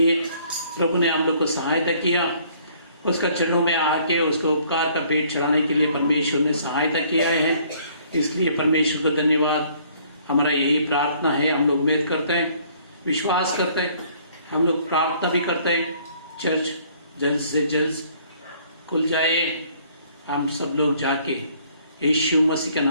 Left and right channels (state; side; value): inverted; both; correlation -0.60